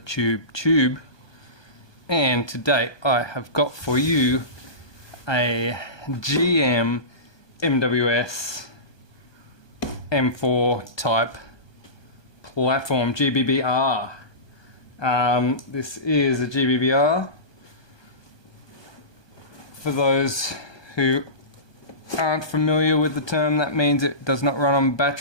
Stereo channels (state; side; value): late; right; 1.2 ms